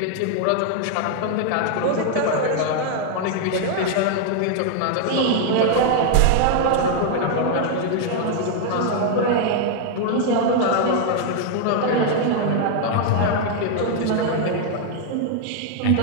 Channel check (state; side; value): different; both; correlation 0.00